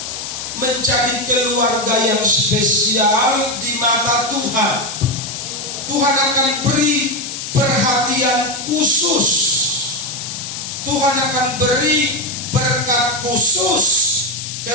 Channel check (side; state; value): left; noise; hiss, 7 dB below the sound